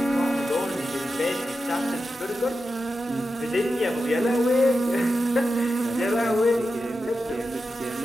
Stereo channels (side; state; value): both; normal; correlation 0.90